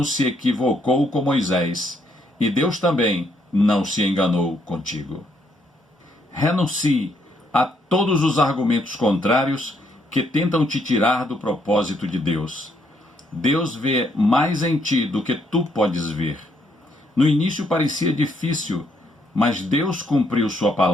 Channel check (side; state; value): both; normal; correlation 0.73